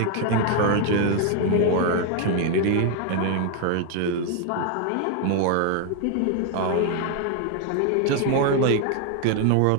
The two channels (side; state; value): both; different; correlation 0.01